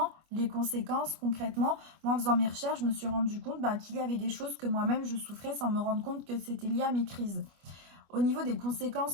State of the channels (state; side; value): late; left; 25 ms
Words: les conséquences concrètement. Moi, en faisant mes recherches, je me suis rendu compte qu'il y avait des choses que moi-même je souffrais sans me rendre compte que c'était lié à mes crises. Au niveau des